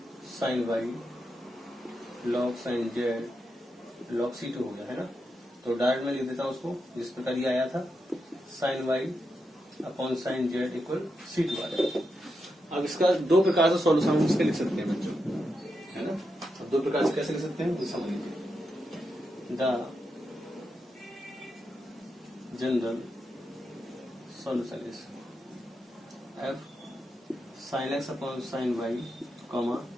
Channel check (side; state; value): both; normal; correlation 0.86